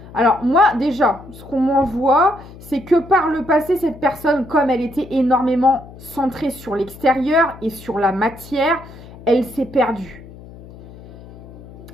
Alors moi déjà, ce qu'on m'envoie, c'est que par le passé, cette personne, comme elle était énormément centrée sur l'extérieur et sur la matière, elle s'est perdue.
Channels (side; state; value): left; noise; hum, 18 dB below the sound